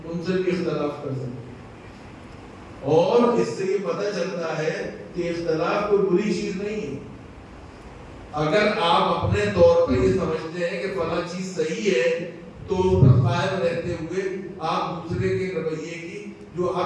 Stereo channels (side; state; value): both; identical; correlation 1.00